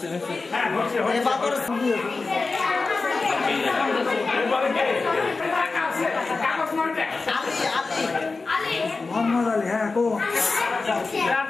মোহাম্মদ আলী হ্যাঁ কো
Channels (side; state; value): right; quieter; 3.9 dB